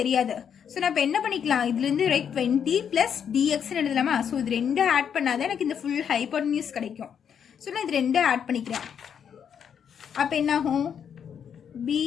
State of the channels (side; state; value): right; quieter; 7.9 dB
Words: தெரியாது. ஸோ நான் இப்போ என்ன பண்ணிக்கலாம், இதுலேருந்து ரைட் 20 ப்ளஸ் டிஎக்ஸ்ன்னு எழுதலாமா. ஸோ இது ரெண்டும் ஆட் பண்ணாதான் எனக்கு இந்த ஃபுல் ஹைப்போட்டனியூஸ் கிடைக்கும். ஸோ நான் இது ரெண்டும் ஆட் பண்ணிக்கிறேன். அப்போ என்னாகும்,